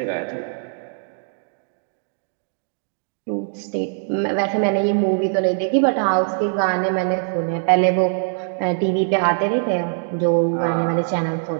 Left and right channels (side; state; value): left; silent; digital silence